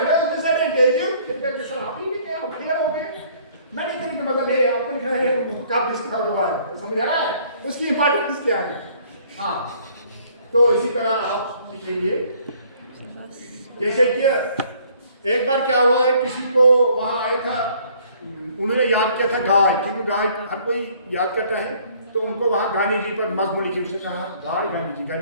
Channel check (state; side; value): inverted; both; correlation -0.60